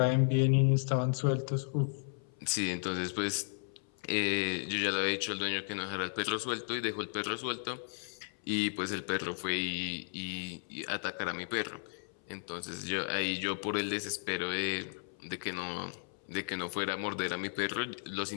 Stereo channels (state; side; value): silent; right; 55 dB below the other